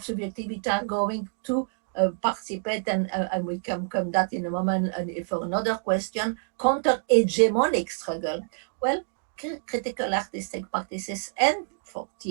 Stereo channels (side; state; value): left; silent; digital silence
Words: subjectivity are going to participate, and we can come that in a moment for another question, counter-hegemonic struggle. Well, critical artistic practices and for